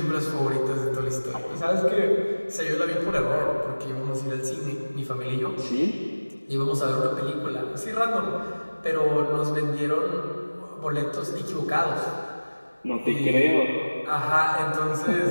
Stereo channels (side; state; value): both; inverted; correlation -1.00